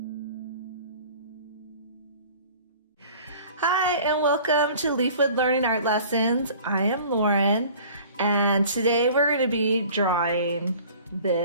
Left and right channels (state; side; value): inverted; both; correlation -0.47